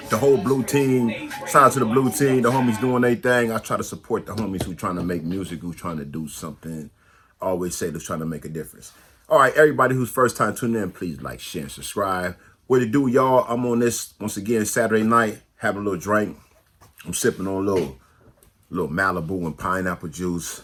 The whole blue team. Shout out to the blue team. The homies doing their thing. I try to support the homies who trying to make music, who trying to do something. I always say they're trying to make a difference. All right, everybody who's first time tuning in, please like, share, and subscribe. What it do, y'all? I'm on this, once again, Saturday night, having a little drink. I'm sipping on a little Malibu and pineapple juice.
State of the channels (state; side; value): identical; both; correlation 1.00